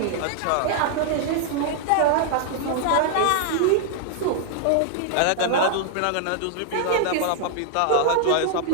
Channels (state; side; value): different; both; correlation 0.00